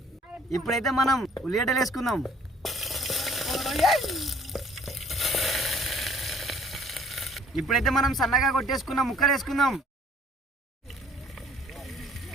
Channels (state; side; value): normal; both; correlation 0.56